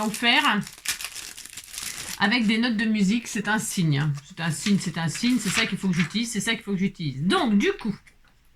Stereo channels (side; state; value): both; identical; correlation 1.00